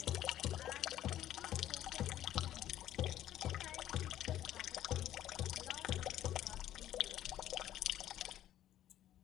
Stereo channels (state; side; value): quieter; right; 12.4 dB